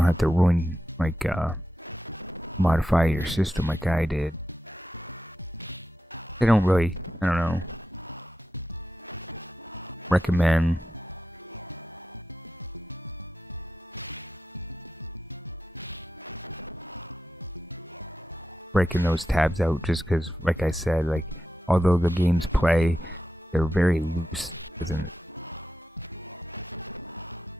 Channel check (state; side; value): normal; both; correlation 0.89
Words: have to ruin, modify your system like I did. They don't really, I don't know, recommend breaking those tabs out just because, like I said, like although the games play, they're very loose, isn't it?